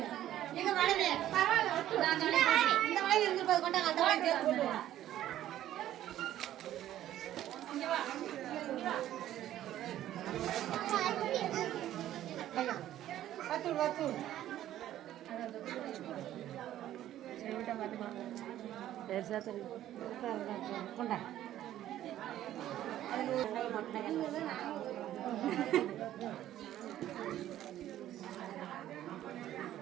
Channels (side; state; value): left; quieter; 12.7 dB